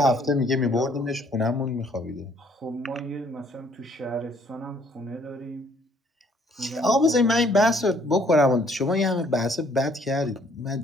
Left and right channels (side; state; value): both; normal; correlation 0.62